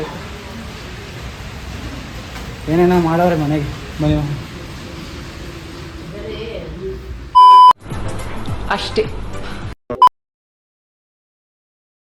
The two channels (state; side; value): identical; both; correlation 1.00